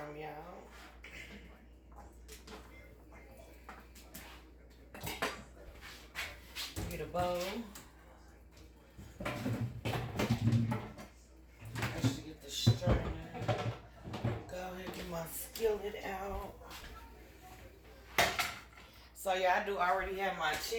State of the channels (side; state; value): both; identical; correlation 1.00